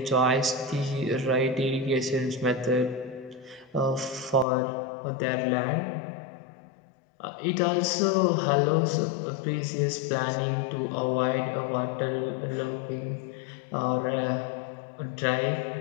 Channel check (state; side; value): drops out; right; at 4.5 s